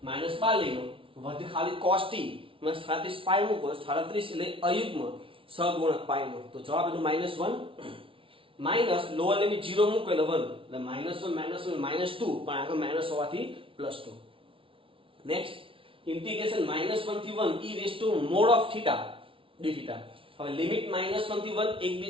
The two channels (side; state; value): left; late; 0.25 ms